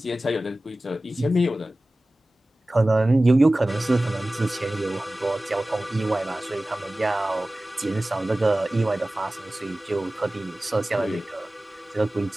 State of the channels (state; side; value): normal; both; correlation 0.97